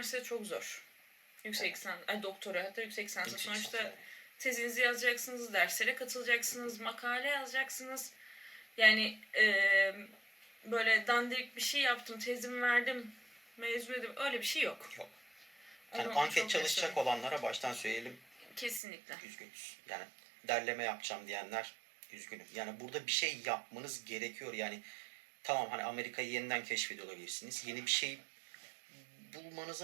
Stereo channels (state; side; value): drops out; left; at 18.8 s